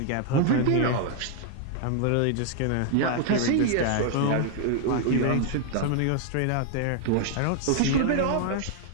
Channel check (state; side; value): different; both; correlation 0.00